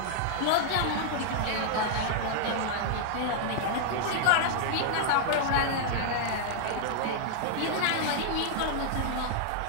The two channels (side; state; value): both; different; correlation -0.01